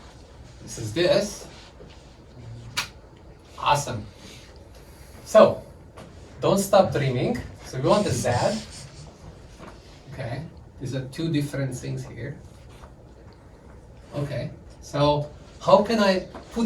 this is this. Awesome. So, don't stop dreaming. So we want a z. Okay, these are two different things here. Okay, So how can I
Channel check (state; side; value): identical; both; correlation 1.00